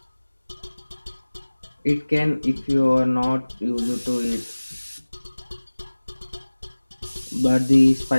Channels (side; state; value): both; inverted; correlation -1.00